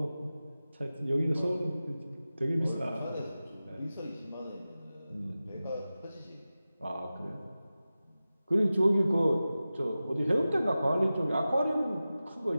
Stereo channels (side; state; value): both; inverted; correlation -0.95